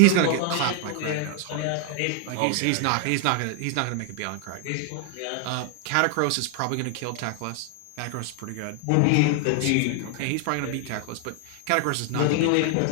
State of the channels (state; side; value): different; both; correlation 0.00